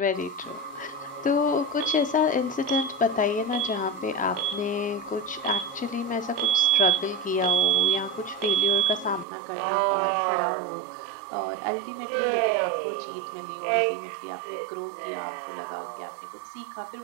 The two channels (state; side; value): drops out; left; at 9.2 s